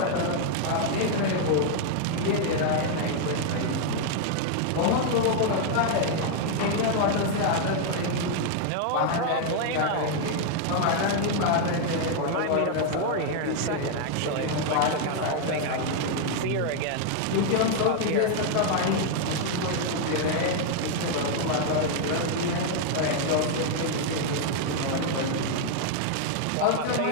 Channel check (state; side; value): different; both; correlation 0.00